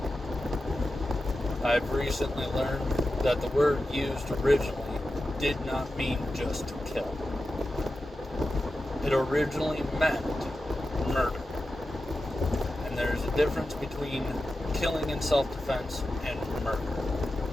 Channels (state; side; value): normal; both; correlation 0.92